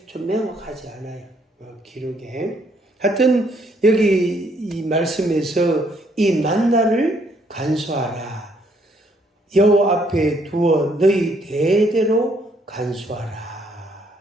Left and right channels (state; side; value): normal; both; correlation 0.69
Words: 좀 명확하지 않아요. 기록에. 하여튼 여기 이 말씀에서 이 만나를 간수하라. 여호와 앞에 두어 너희 대대로 간수하라.